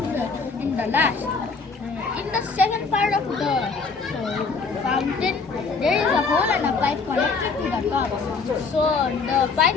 in the last. In the second part of the fountain, there is a hole and a pipe connected to the top. So the pipe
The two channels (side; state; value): right; quieter; 4.7 dB